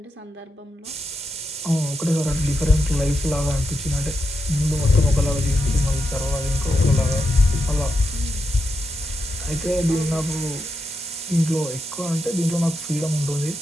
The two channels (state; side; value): normal; both; correlation 0.85